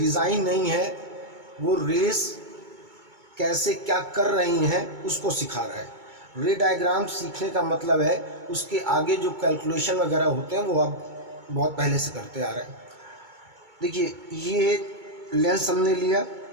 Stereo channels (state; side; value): late; left; 2.2 ms